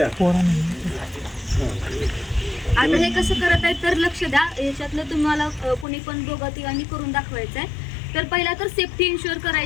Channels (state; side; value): drops out; right; at 5.9 s